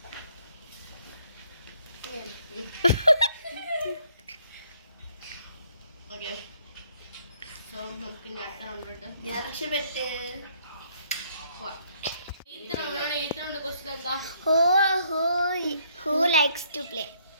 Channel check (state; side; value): inverted; both; correlation -0.66